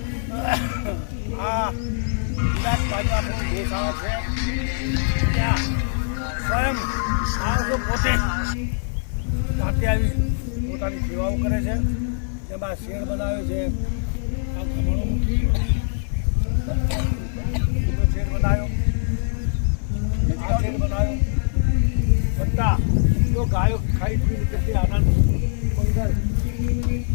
આ વિરાટભાઈનું આપણું ગૌશાળા છે. ત્યાં સ્વયં માણસો પોતે જાતે આવી પોતાની સેવાઓ કરે છે. જેમાં શેડ બનાવે છે, આ ખમણો મૂકી શેડ બનાવ્યો, આ શેડ બનાવ્યો. બધા તો ગાયો ખાઈ પીને કેટલી આનંદ મંગળ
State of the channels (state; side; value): silent; right; digital silence